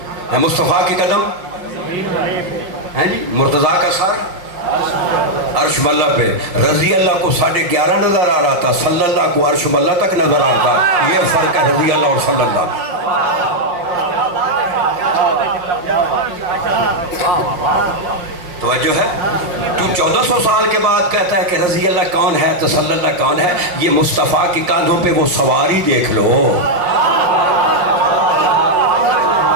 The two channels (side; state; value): left; late; 5.7 ms